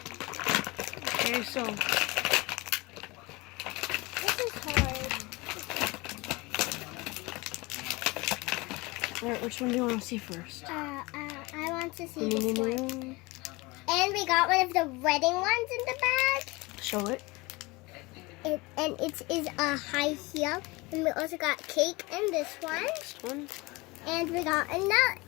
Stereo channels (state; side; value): quieter; right; 23.8 dB